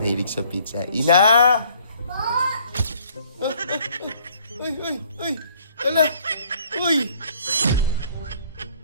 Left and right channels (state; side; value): inverted; both; correlation -0.60